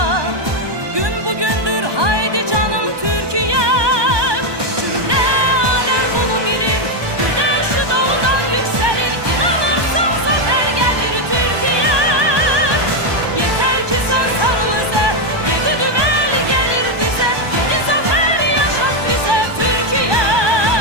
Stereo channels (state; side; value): late; left; 1.2 ms